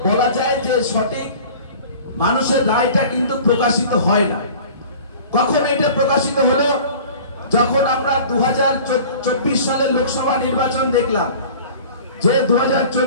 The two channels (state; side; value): inverted; both; correlation -0.43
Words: বলা যায় যে সঠিক মানুষের রায়টা কিন্তু প্রকাশিত হয় না। কখন এটা প্রকাশিত হলো? যখন আমরা 2024 সালের লোকসভা নির্বাচন দেখলাম, যে